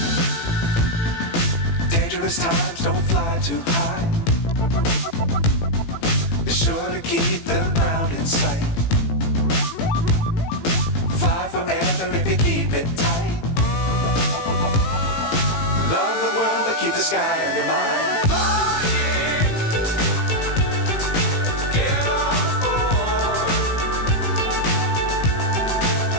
Times don't fly too high. Be sure to keep the ground in sight. Fly forever if you keep it tight. Love the world but keep the sky on your mind.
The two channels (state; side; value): late; right; 18 ms